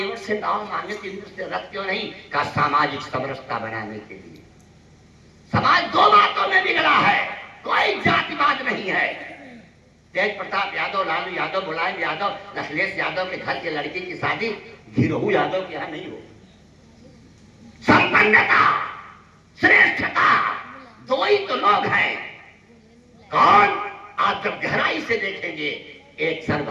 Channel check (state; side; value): identical; both; correlation 1.00